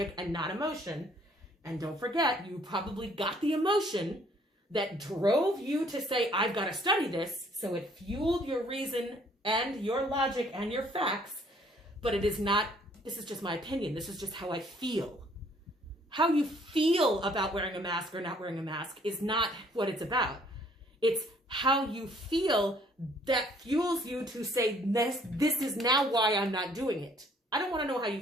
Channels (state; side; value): normal; both; correlation 0.61